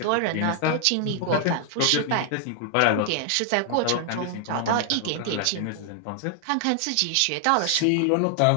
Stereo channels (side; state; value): both; different; correlation 0.00